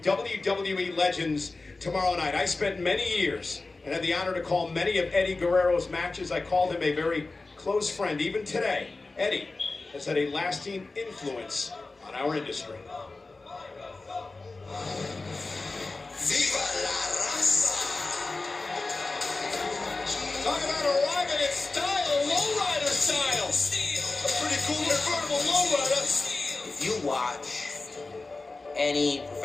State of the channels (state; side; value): quieter; right; 3.5 dB